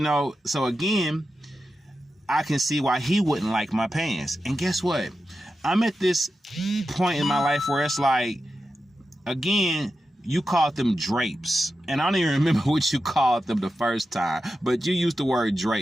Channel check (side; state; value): both; normal; correlation 0.91